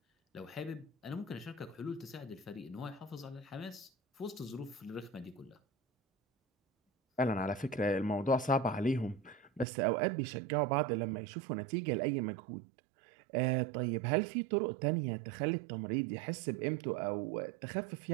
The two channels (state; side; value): drops out; left; at 9.7 s